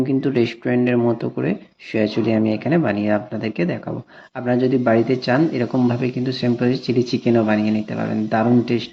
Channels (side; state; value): both; identical; correlation 1.00